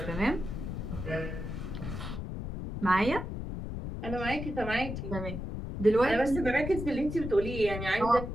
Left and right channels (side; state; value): left; noise; rumble, 6 dB below the sound